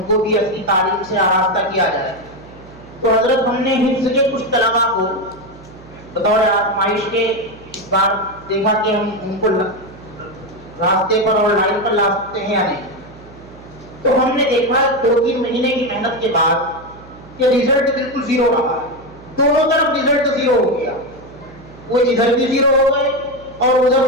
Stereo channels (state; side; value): noise; right; hum, 20 dB below the sound